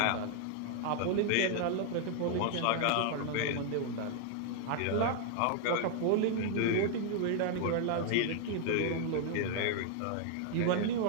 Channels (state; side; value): different; both; correlation 0.00